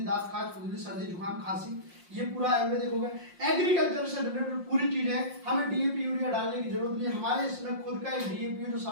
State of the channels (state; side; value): late; left; 5.6 ms